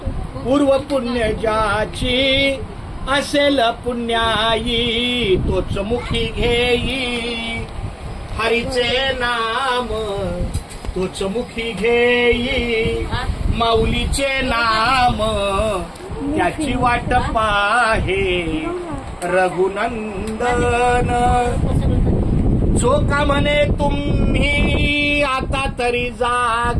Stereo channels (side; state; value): both; identical; correlation 1.00